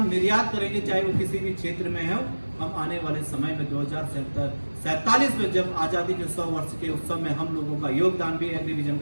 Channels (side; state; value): both; inverted; correlation -1.00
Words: निर्यात करेंगे, चाहे वो किसी भी क्षेत्र में हो। हम आने वाले समय में 2047 में जब आजादी के 100 वर्ष के उत्सव में हम लोगों का योगदान भी, एग्रीविजन